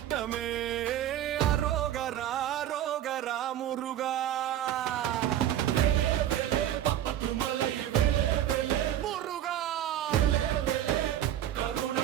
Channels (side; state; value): left; quieter; 11.6 dB